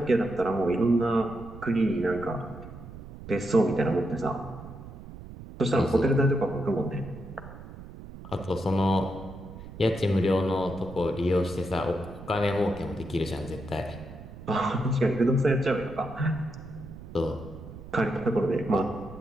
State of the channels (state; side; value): noise; right; rumble, 14 dB below the sound